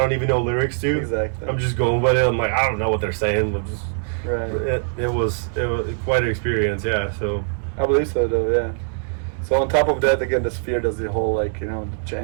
don't even know lyrics to. Exactly. I'm just going with it. I'm like, I don't know what they're saying. I'm just Right. it was quite an experience. Yeah. So I believe so, though. Yeah. So on top of that, again, the Sphere does the whole like the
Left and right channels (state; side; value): silent; left; 64 dB below the other